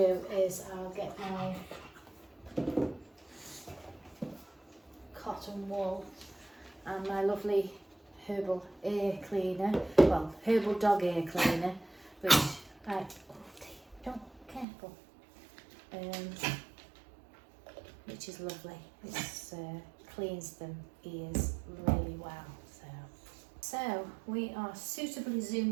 is I'll get my cotton wool and my lovely herbal ear cleaner, well, herbal dog ear cleaner, which careful, which is lovely. It cleans them ears really well. So we are suitably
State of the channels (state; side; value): drops out; left; at 14.7 s